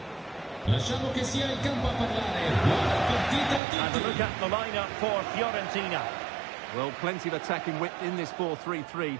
Lasciamo che sia il campo a parlare. Buona partita a tutti. And a look at the lineup for Fiorentina. Well, plenty of attacking width in this 4-3-3,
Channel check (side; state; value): left; drops out; at 3.6 s